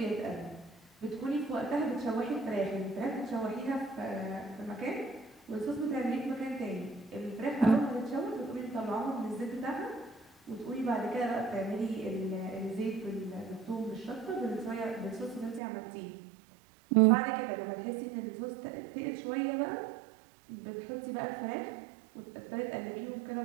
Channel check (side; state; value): left; drops out; at 15.6 s